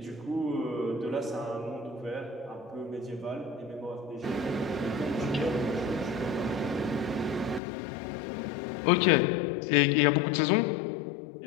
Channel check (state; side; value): drops out; right; at 7.6 s